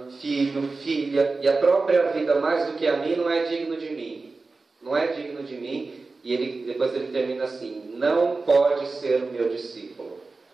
filho, filha e a própria vida mais do que a mim, não é digno de mim. Não é digno de mim. E depois ele termina assim: não pode ser o meu discípulo.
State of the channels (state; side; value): quieter; left; 3.8 dB